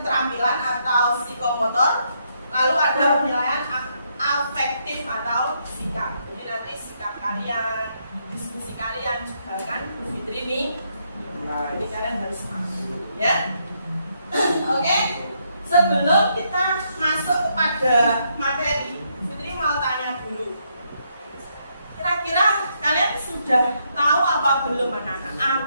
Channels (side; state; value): both; inverted; correlation -0.76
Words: atau psikomotor, lalu ada penilaian afektif atau sikap. Jadi nanti sikap kalian, diskusi kalian juga kan Bu Fitri ini. Jadi kalian harus masuk, ya. Oke. Sebelum kita masuk kepada materi, Fitri mau tanya dulu. Kira-kira kalian sudah tahu apa belum anak-anak?